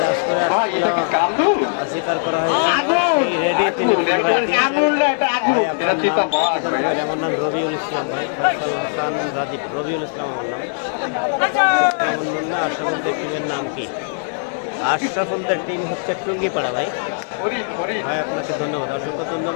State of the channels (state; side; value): silent; right; 65 dB below the other